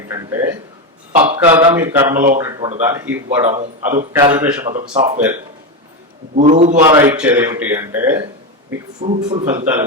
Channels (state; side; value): normal; both; correlation 0.13